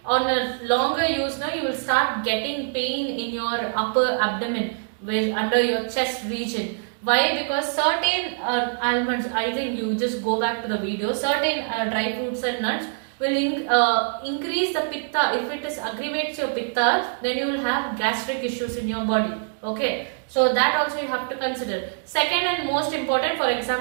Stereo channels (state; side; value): silent; left; digital silence